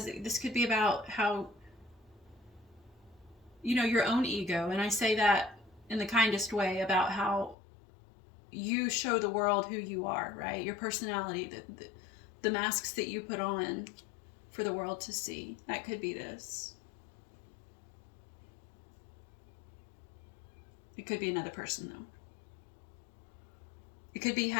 this could be about how, you know, your own ego. And I say that in the kindest way, about how you show the world who you are, right? Your personality, the masks that you put on for the world to see. That could be this. It could be another person, though. It could be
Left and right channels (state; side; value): drops out; right; at 7.6 s